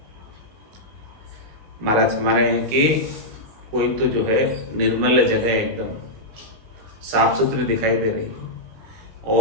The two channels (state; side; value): late; left; 19 ms